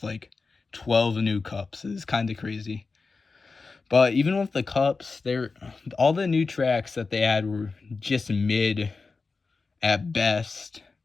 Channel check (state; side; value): quieter; right; 4.3 dB